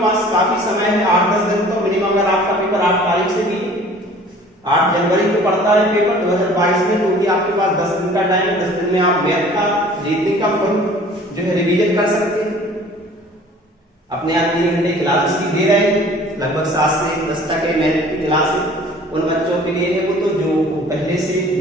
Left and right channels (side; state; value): both; normal; correlation 0.49